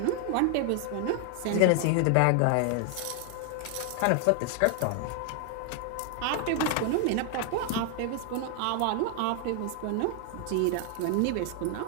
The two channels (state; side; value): different; both; correlation 0.00